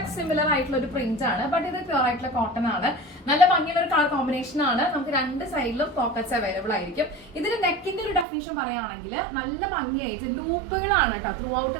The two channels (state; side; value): drops out; left; at 8.2 s